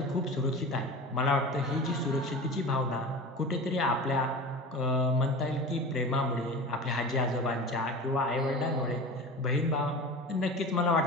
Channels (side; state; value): both; normal; correlation 0.33